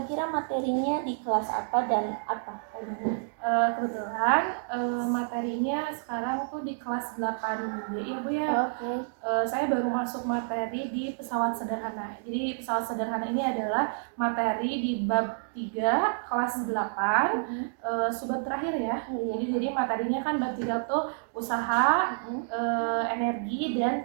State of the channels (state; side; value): silent; left; digital silence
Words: materinya di kelas apa dan apa? Kebetulan materinya sekarang tuh di kelas 8B ya Bu ya. Oke. Saya baru masuk materi di pesawat sederhana. Jadi pesawat sederhana ini adalah materi di bab 3 kelas 8 subbab terakhir ya. Jadi materinya kan bab 3 tuh usaha, energi